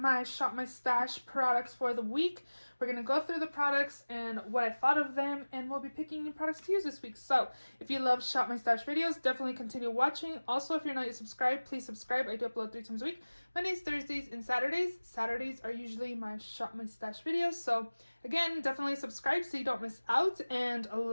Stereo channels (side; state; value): both; inverted; correlation -1.00